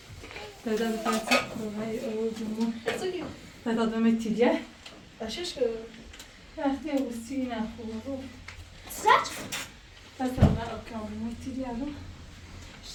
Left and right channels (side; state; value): both; identical; correlation 1.00